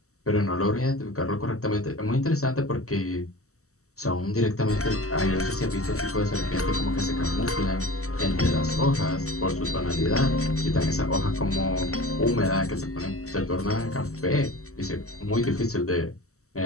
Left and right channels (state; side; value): late; right; 0.64 ms